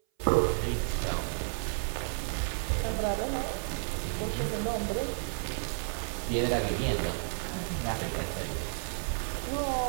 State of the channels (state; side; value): silent; left; 57 dB below the other